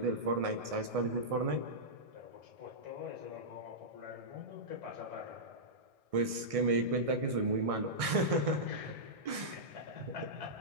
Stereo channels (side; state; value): left; late; 1.6 ms